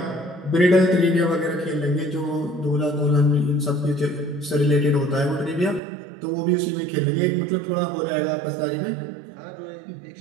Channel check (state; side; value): drops out; left; at 5.8 s